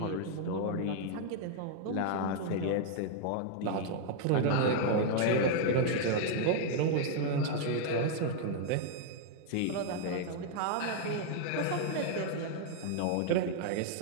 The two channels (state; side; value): different; both; correlation 0.00